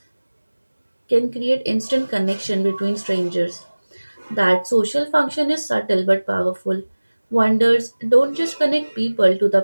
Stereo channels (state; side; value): inverted; both; correlation -1.00